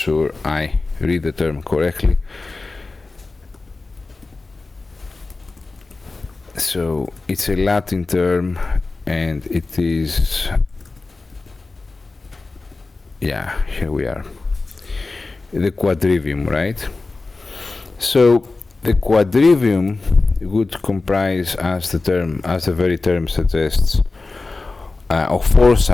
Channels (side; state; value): right; quieter; 3.6 dB